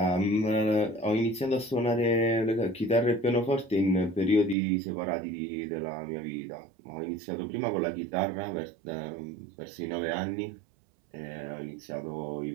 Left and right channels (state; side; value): drops out; left; at 4.5 s